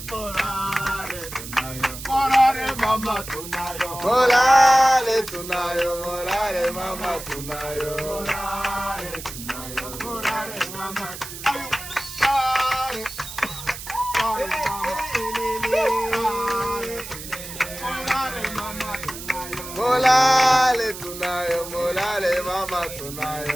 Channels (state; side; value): noise; right; hiss, 11 dB below the sound